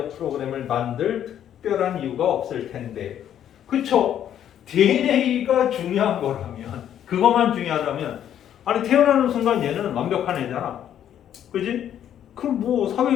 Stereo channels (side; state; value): right; quieter; 10.2 dB